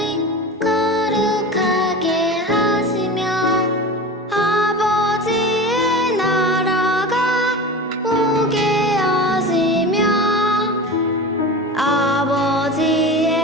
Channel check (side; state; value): both; normal; correlation 0.31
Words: 거룩하게 하시며 아버지의 나라가 오게 하시며